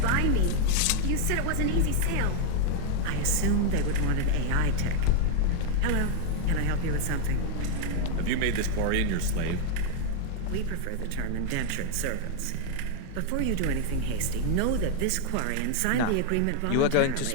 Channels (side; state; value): both; different; correlation 0.00